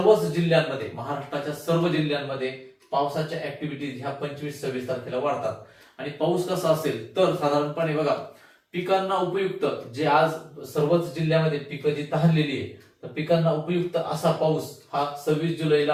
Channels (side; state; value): both; identical; correlation 1.00